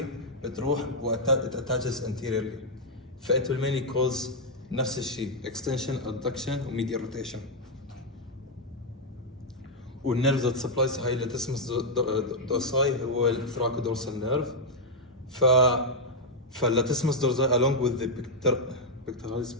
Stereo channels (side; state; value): both; normal; correlation -0.02